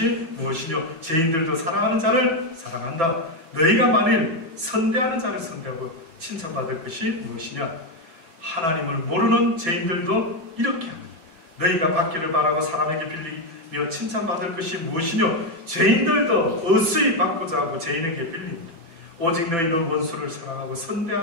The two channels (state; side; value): late; left; 6.0 ms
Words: 무엇이뇨? 죄인들도 사랑하는 자를 사랑한다. 너희가 만일 선대하는 자를 선대하고 칭찬받을 것이 무엇이냐? 하나님을 모르는 죄인들도 이렇게 합니다. 너희가 받기를 바라고 사람에게 빌리며 칭찬받을 것이 무엇이뇨? 죄인들도 어수히 받고자 하고 죄인에게 빌립니다. 오직 너희는 원수를 사랑하고